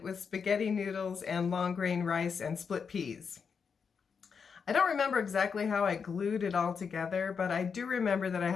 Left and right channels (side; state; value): right; quieter; 6.1 dB